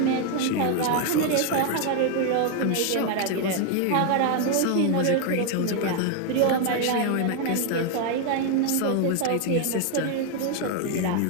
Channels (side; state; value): both; different; correlation 0.00